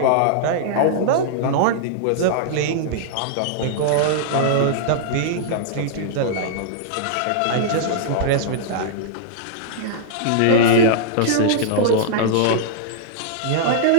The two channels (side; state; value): both; different; correlation -0.02